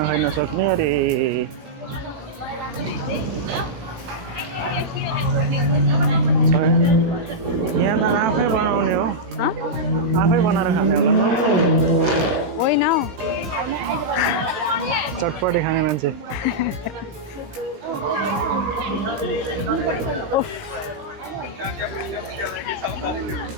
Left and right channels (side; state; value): left; late; 17 ms